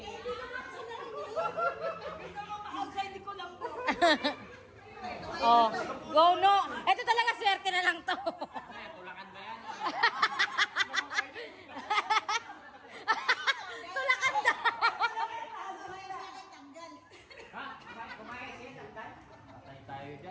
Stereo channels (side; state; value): both; identical; correlation 1.00